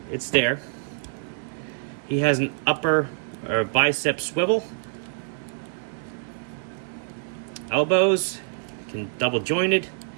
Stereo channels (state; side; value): silent; left; digital silence